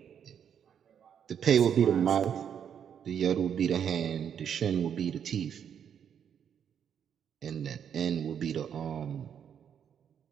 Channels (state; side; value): quieter; left; 8.3 dB